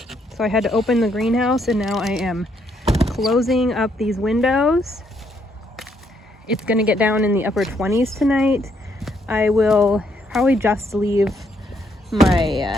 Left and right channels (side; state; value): both; normal; correlation 0.72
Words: so I had to open the greenhouse, and now I am closing up these windows. It's going to get down in the upper 20s tonight. I will probably just leave